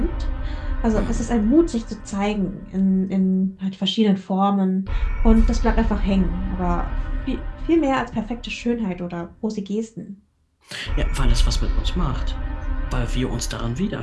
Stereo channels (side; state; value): both; identical; correlation 1.00